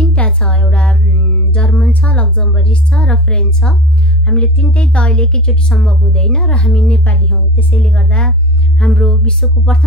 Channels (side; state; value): both; normal; correlation 0.32